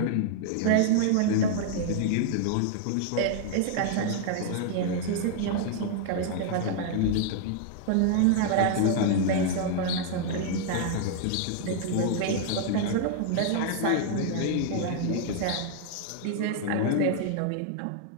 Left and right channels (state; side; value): different; both; correlation 0.00